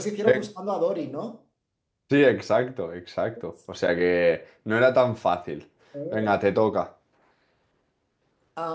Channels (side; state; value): both; identical; correlation 1.00